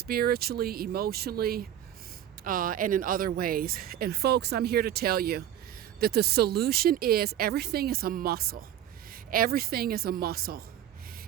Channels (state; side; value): quieter; left; 11.2 dB